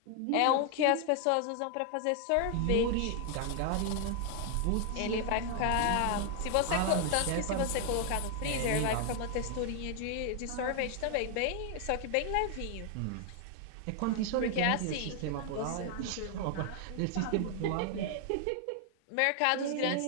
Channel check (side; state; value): both; different; correlation 0.00